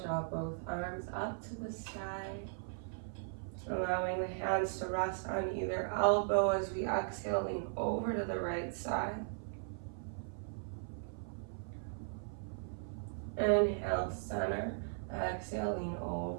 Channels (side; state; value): left; silent; 52 dB below the other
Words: draw both arms up to the sky. Allowing the hands to rest on either elbow as we exhale, lean over to the right side. Inhale, center. Exhale, lean